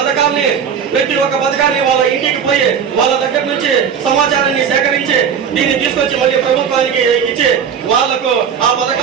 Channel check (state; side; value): quieter; left; 7.3 dB